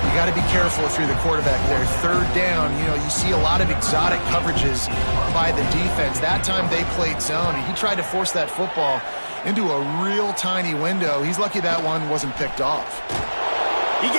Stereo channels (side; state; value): both; inverted; correlation -1.00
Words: got to be careful if you're the quarterback there. 3rd down, you know, you see a lot of exotic coverages by the defense. That time they played zone, and he tried to force that football into a real tiny window. He's lucky that one wasn't picked off. He